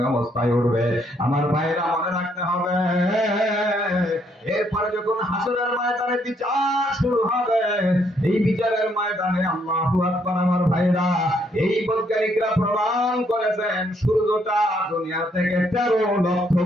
অবস্থায় উঠবে। আমার ভাইরা মনে রাখতে হবে, এরপরে যখন হাসরের ময়দানে বিচার শুরু হবে, এই বিচারের ময়দানে আল্লাহু আকবার। আমার ভাইরা, এই বৈজ্ঞানিকরা প্রমাণ করেছেন সূর্যটা দুনিয়া থেকে 13 লক্ষ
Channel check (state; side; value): normal; both; correlation 0.71